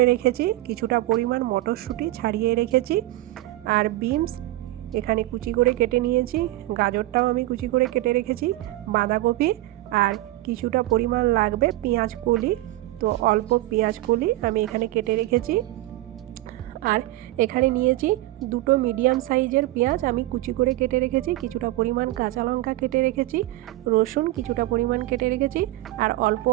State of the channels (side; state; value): left; quieter; 17.3 dB